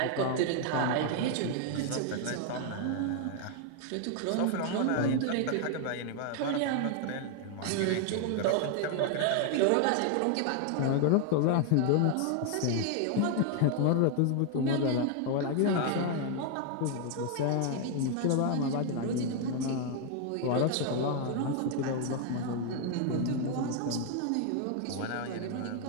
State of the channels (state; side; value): different; both; correlation 0.00